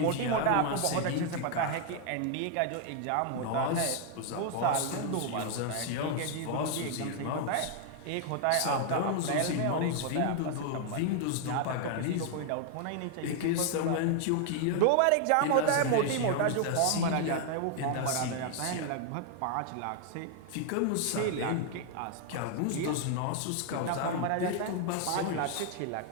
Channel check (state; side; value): different; both; correlation 0.00